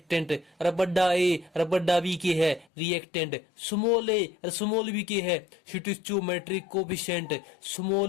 अरे बड़ा ए अरे बड़ा बी के है रिएक्टेंट, स्मॉल ए और स्मॉल बी के है स्टोइचोमेट्रिक कोफिशिएंट,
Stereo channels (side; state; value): right; drops out; at 2.7 s